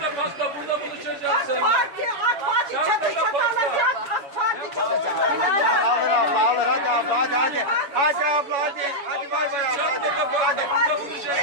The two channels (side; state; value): left; late; 7.1 ms